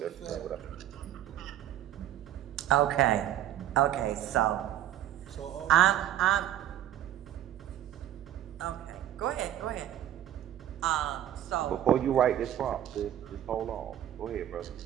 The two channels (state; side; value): quieter; left; 11.8 dB